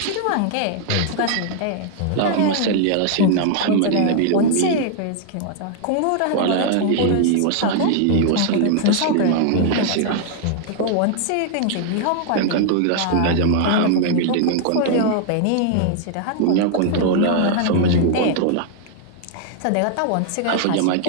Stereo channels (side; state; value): both; different; correlation -0.01